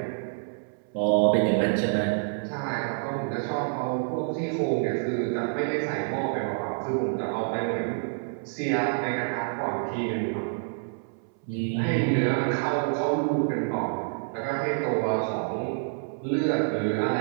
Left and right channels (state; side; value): silent; left; 60 dB below the other